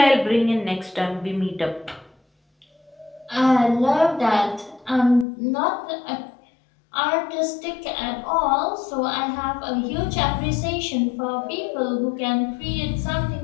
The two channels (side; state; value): right; drops out; at 5.2 s